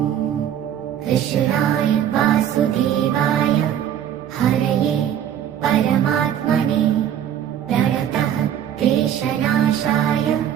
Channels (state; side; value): quieter; left; 10.1 dB